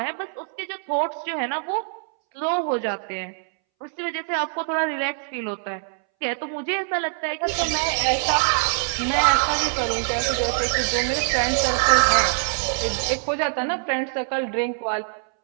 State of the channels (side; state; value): left; silent; 63 dB below the other